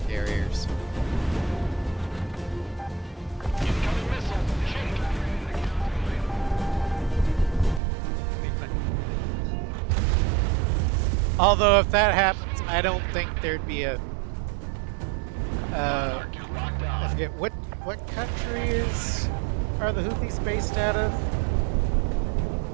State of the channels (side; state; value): left; drops out; at 7.8 s